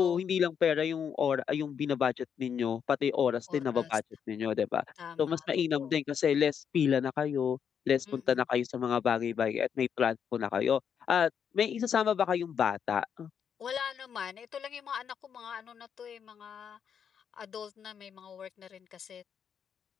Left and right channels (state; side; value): quieter; right; 7.6 dB